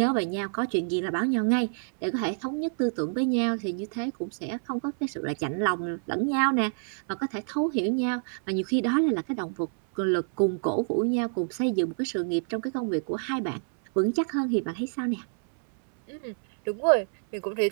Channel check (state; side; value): silent; left; 60 dB below the other